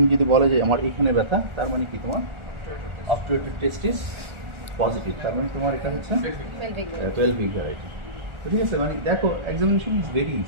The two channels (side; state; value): left; late; 1.4 ms